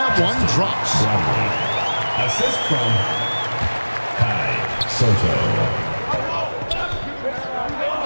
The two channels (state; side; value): inverted; both; correlation -1.00